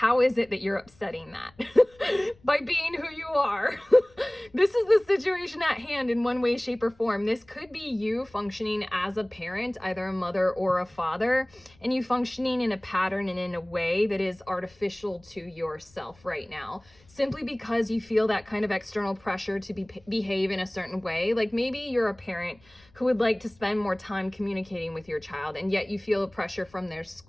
is it that you're upsetting that? By being who you are. This is the situation at hand in one way, shape, or form. This could be you functioning as a parent, either a mother or a father, and you functioning in a pattern and in a way that is artificial to yourself right now, simply because you feel that kind of external pressure to behave in a certain way. Like maybe you're a parent who would like to spend more time communicating with your child, and yet you feel a pressure from their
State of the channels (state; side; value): noise; left; rumble, 29 dB below the sound